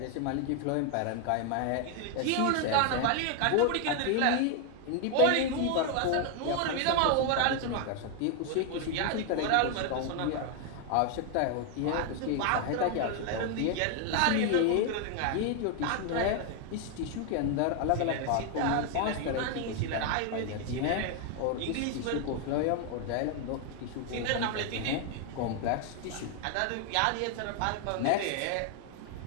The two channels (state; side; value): different; both; correlation 0.00